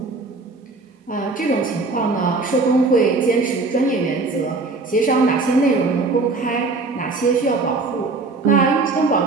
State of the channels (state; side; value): quieter; left; 3.7 dB